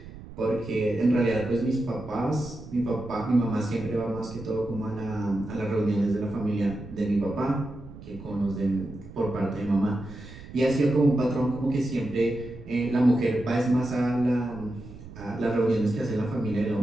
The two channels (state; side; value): noise; right; rumble, 15 dB below the sound